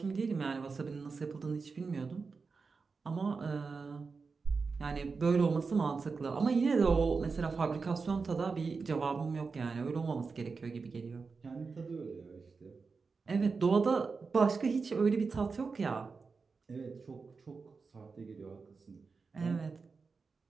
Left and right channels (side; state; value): left; quieter; 4.7 dB